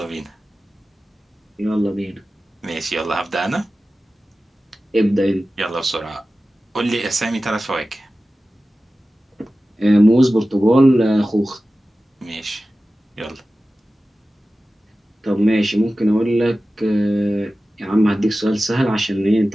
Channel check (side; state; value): both; normal; correlation 0.95